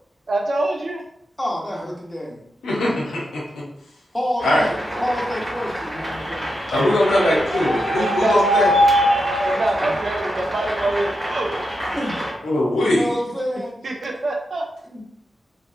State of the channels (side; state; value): both; normal; correlation 0.85